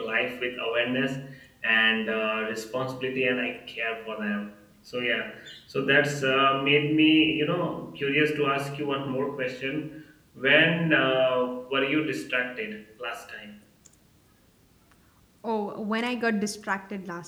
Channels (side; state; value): both; identical; correlation 1.00